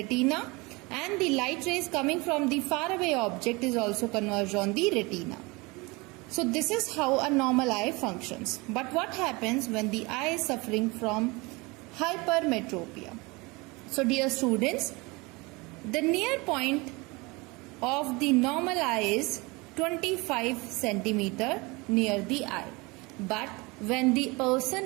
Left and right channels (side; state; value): left; quieter; 25.3 dB